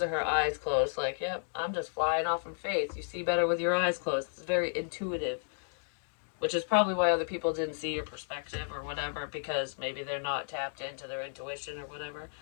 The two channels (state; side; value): silent; right; digital silence